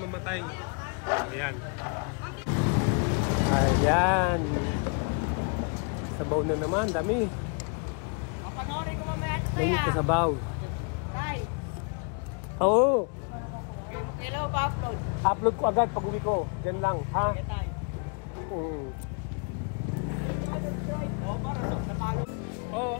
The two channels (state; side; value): quieter; right; 36.9 dB